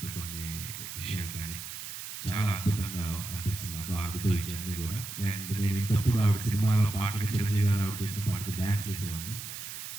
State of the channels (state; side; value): noise; right; hiss, 8 dB below the sound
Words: కొన్ని విషయాలు కానీ చాలా అద్భుతంగా అనిపిస్తుంది నాకు ఆవిడతో ఈ జర్నీ కూడా. అండ్ నేను ఇంతప్పుడు ఆవిడ సినిమాలో పాటలకి చిరంజీవి గారు ఆవిడ చేసిన పాటకి డ్యాన్స్ చేసేవాడిని.